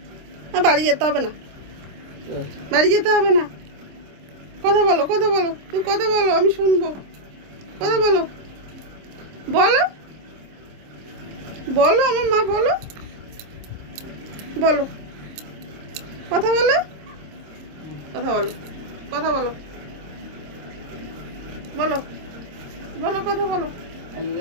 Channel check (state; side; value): late; left; 26 ms